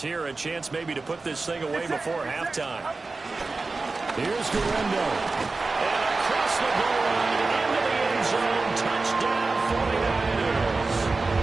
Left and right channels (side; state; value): left; quieter; 3.7 dB